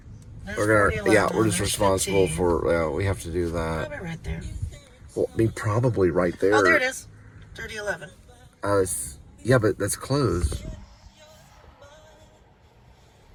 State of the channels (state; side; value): identical; both; correlation 1.00